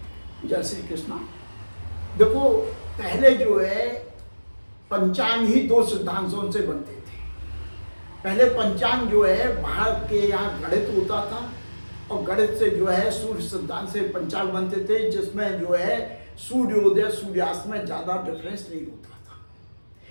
जय श्री कृष्णा। देखो, पहले जो है पंचांग ही दो सिद्धांतों से बनते थे। पहले पंचांग जो है भारत के यहाँ गणित होता था और गणित से जो है सूर्य सिद्धांत से पंचांग बनते थे, जिसमें जो है सूर्योदय सूर्यास्त में ज़्यादा डिफरेंस नहीं होता था,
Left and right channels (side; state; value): both; inverted; correlation -1.00